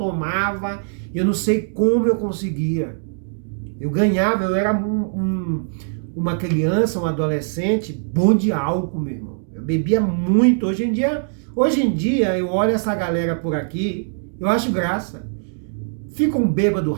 Eu não sei como eu conseguia. Eu ganhava, eu era uma criança, um adolescente bom de álcool, meu irmão. Eu bebia muito. Hoje em dia eu olho essa galera por aqui, eu acho graça. Fica um bêbado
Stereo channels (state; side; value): silent; left; digital silence